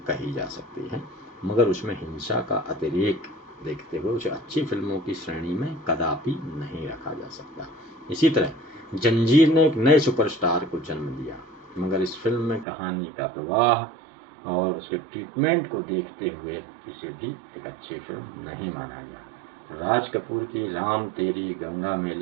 कही जा सकती है, मगर उसमें हिंसा का अतिरेक देखते हुए उसे अच्छी फिल्मों की श्रेणी में कदापि नहीं रखा जा सकता। इसी तरह जंजीर ने एक नए सुपरस्टार को जन्म दिया, मगर इस फिल्म में कहानी का प्रवाह और उसके ट्रीटमेंट को देखते हुए इसे भी एक अच्छी फिल्म नहीं माना गया। राज कपूर की राम तेरी गंगा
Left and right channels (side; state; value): left; drops out; at 12.7 s